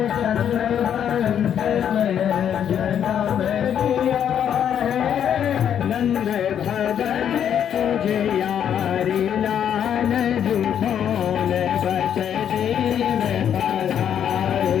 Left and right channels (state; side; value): quieter; right; 9.1 dB